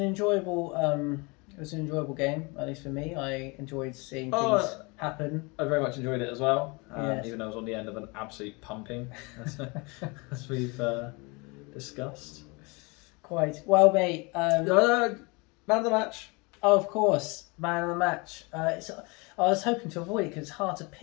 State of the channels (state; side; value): quieter; right; 28.1 dB